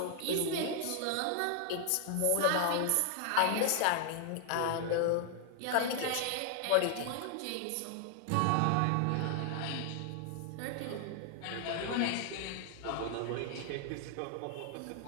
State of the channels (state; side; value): different; both; correlation 0.00